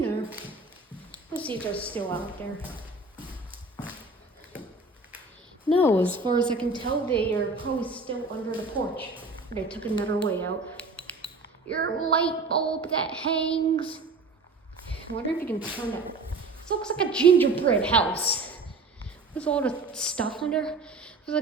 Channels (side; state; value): left; quieter; 3.5 dB